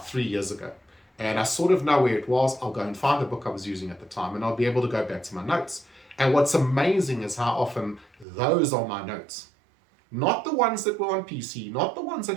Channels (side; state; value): left; drops out; at 8.2 s